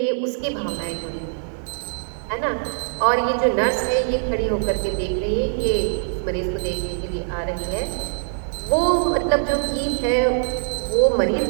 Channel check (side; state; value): left; silent; digital silence